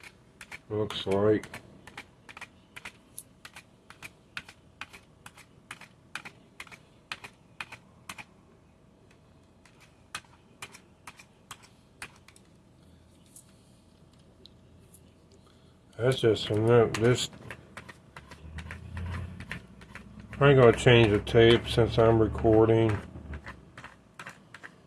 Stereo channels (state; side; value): identical; both; correlation 1.00